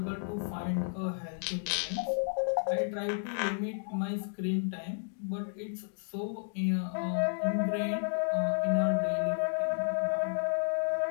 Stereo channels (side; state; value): right; silent; digital silence